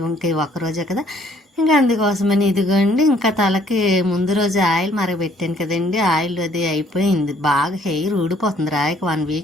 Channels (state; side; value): normal; both; correlation 0.62